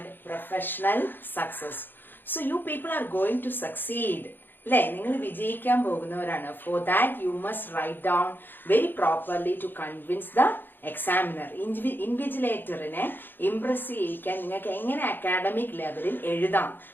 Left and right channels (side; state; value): right; late; 0.095 ms